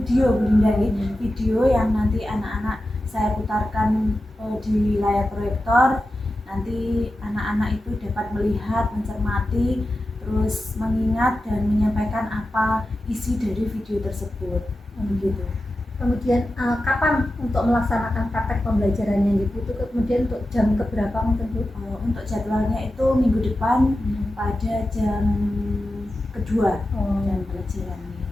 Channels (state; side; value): normal; both; correlation 0.92